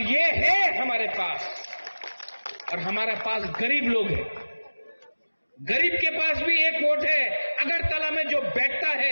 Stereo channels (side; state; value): both; inverted; correlation -1.00